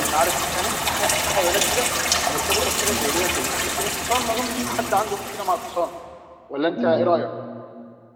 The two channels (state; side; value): identical; both; correlation 1.00